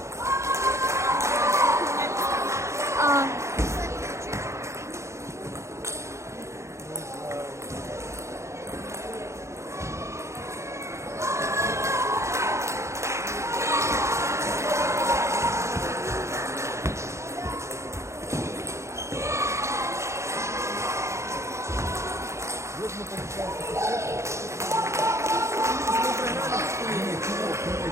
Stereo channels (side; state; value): left; late; 0.14 ms